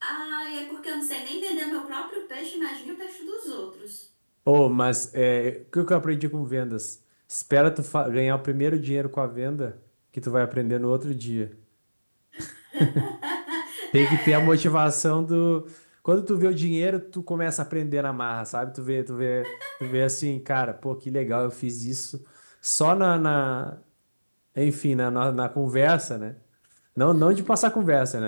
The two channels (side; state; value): both; inverted; correlation -1.00